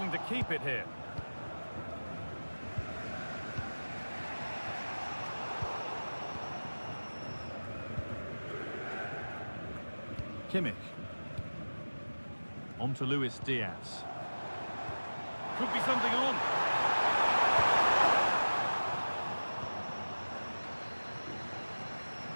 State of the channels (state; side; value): inverted; both; correlation -1.00